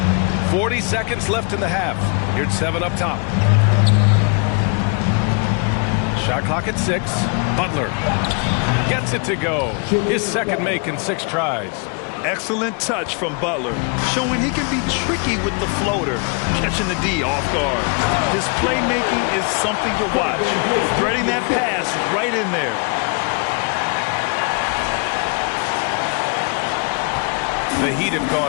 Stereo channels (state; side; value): quieter; right; 35.3 dB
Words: 40 seconds left in the half. Here's 7 up top. Shot clock at 6. Butler gets it to go. His second make in 6 tries. Excellent touch from Butler, showing he can be tricky with the floater, catching the D off guard. His playmaking is something to watch. Threading that pass right in there. The Heat have